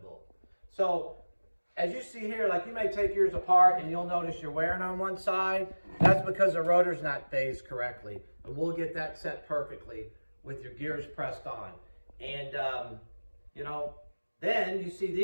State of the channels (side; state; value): both; inverted; correlation -1.00